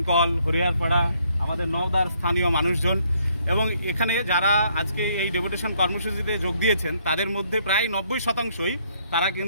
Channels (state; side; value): inverted; both; correlation -0.69